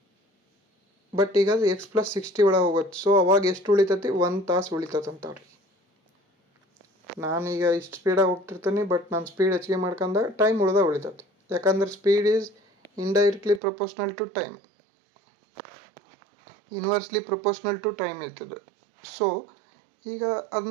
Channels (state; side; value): drops out; left; at 13.6 s